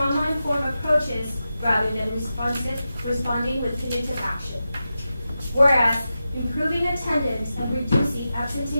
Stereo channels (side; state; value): both; inverted; correlation -0.91